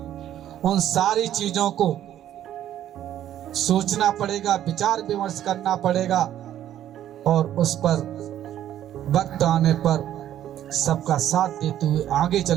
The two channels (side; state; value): left; quieter; 11.6 dB